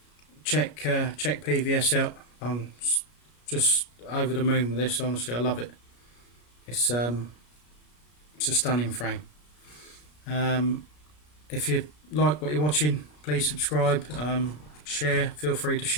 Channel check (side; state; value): right; late; 33 ms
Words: check PVS out. I'm just over the moon with this. Honestly, I love it. It's a stunning frame. If you like what you're watching, please subscribe, share. Feel free to